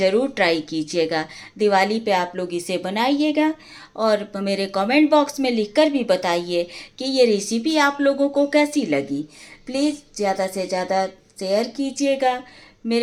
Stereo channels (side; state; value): both; identical; correlation 1.00